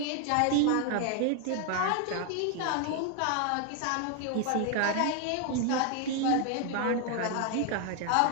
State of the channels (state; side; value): different; both; correlation 0.00